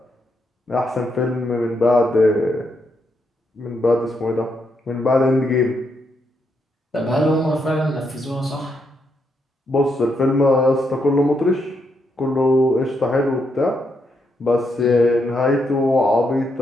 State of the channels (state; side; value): normal; both; correlation 0.79